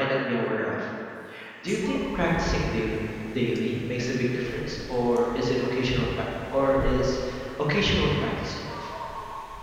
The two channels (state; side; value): identical; both; correlation 1.00